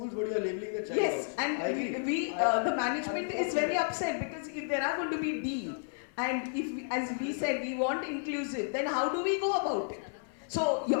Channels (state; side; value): silent; right; 55 dB below the other